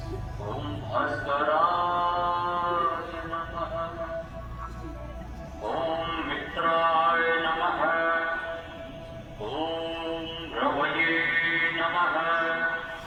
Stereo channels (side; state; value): both; identical; correlation 1.00